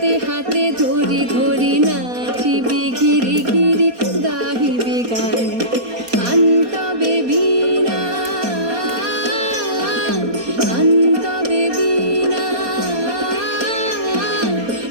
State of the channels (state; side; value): late; left; 4.2 ms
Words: হাতে ধরি ধরি নাচিবি ঘিরি ঘিরি গাহিবি গান। আনতবে বীণা আনতবে বীণা